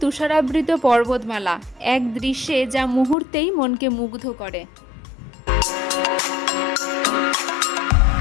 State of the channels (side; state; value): right; drops out; at 3.2 s